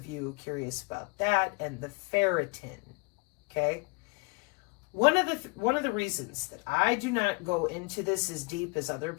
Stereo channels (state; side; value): quieter; right; 29.7 dB